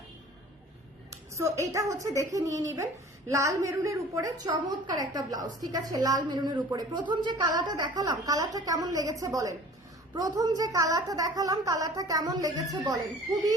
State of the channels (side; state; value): both; normal; correlation 0.46